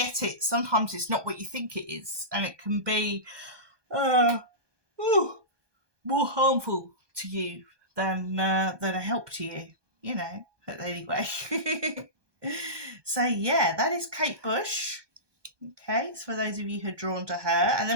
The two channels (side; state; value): left; late; 1.2 ms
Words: it, sometimes it's not what you think it is, and it can be more harmful to you than a help to you. You know. But anyway, so yeah, that is Kate Bush. Okay, so for those of you who are drawn to her. And